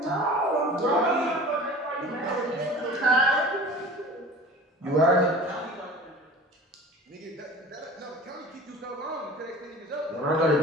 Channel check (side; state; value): both; normal; correlation 0.40